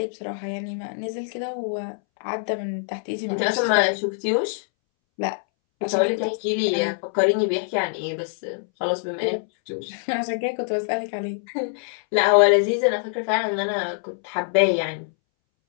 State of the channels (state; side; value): silent; right; 62 dB below the other